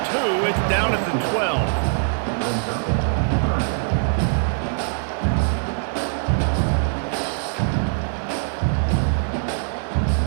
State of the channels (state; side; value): silent; left; 64 dB below the other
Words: 2. It's down at the 12.